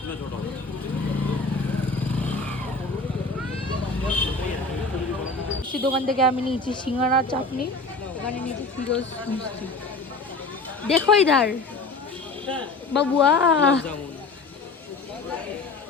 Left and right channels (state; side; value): quieter; right; 3.6 dB